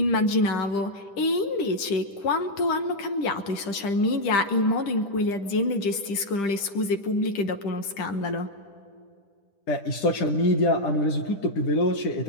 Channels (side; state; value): right; late; 10 ms